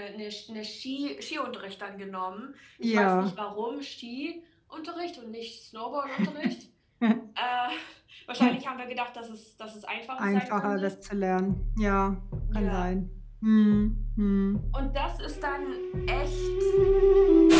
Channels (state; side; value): identical; both; correlation 1.00